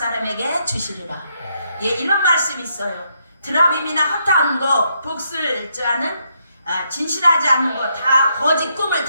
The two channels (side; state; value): both; inverted; correlation -0.76